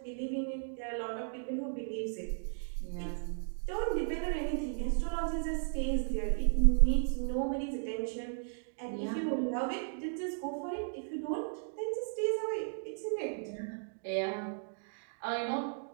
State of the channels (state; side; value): silent; left; digital silence